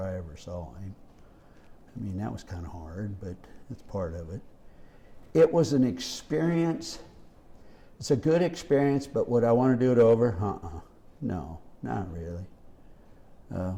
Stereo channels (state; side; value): identical; both; correlation 1.00